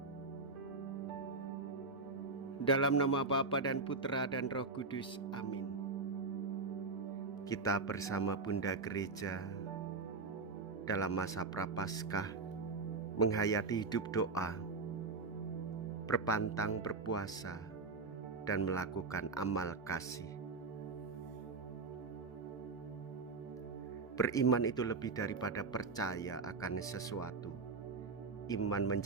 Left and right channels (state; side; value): quieter; left; 4.0 dB